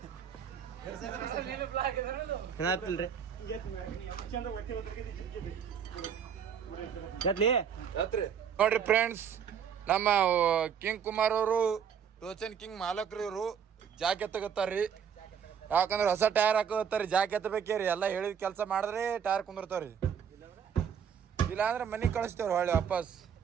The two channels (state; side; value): quieter; left; 7.7 dB